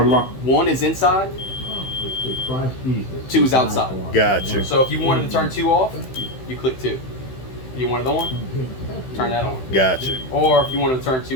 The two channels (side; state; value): right; late; 16 ms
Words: lo- one is inside, two is outside. Gotcha. So if you wanted to turn two off, you click two. If you wanted on, turn that on. Gotcha. Or if you wanted to turn